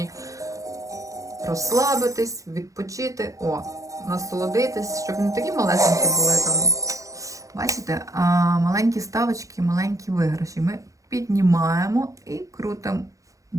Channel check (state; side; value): late; left; 0.16 ms